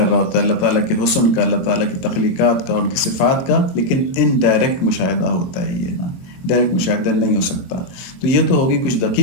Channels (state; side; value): late; right; 23 ms